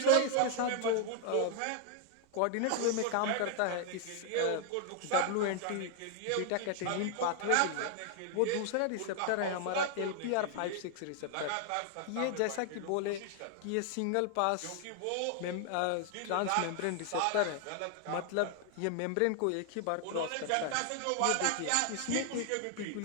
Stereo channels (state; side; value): different; both; correlation 0.00